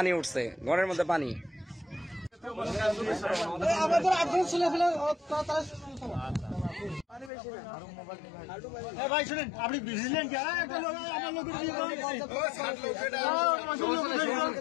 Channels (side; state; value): right; drops out; at 7.3 s